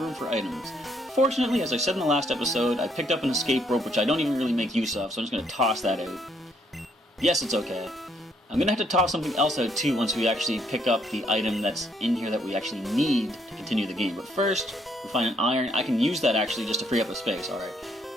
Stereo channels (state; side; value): normal; both; correlation 0.70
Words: room for items. Fortunately, as I said in the last episode, I picked up an escape rope, which I don't even really make use of, so I'm just going to toss that out. Yes, it's okay. I'm going to have to toss something else out too once we actually pick up the item that's in here that we actually need to continue the game. But first, we find an iron. I can use that actually just to free up a space, alright.